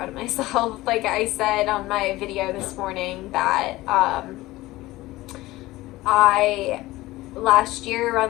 of myself. Like I said on my video this morning that I last year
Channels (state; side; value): quieter; right; 18.2 dB